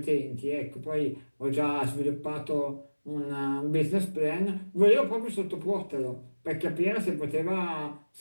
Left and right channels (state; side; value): inverted; both; correlation -1.00